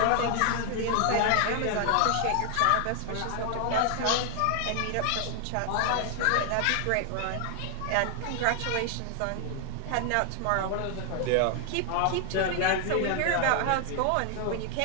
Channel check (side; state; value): both; different; correlation 0.00